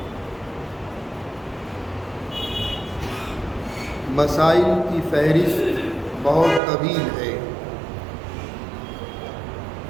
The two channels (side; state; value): left; drops out; at 6.6 s